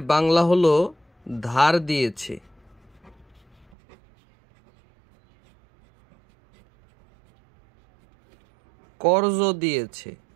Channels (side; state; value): left; drops out; at 3.7 s